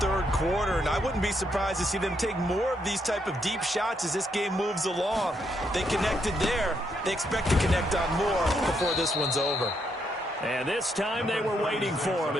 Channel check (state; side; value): normal; both; correlation 0.76